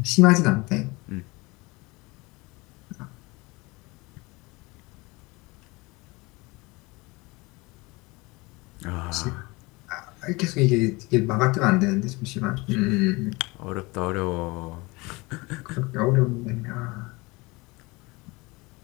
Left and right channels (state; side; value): quieter; right; 24.4 dB